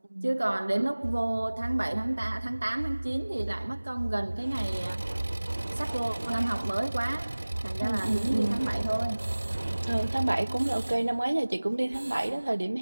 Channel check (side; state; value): both; inverted; correlation -1.00